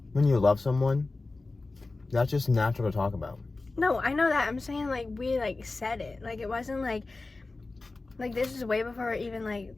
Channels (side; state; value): right; quieter; 3.4 dB